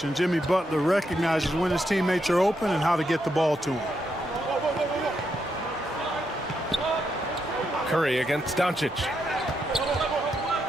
Jimmy Butler recognizes when his teammates are open and how to get the ball to him. Curry against Doncic.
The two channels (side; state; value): both; normal; correlation 0.81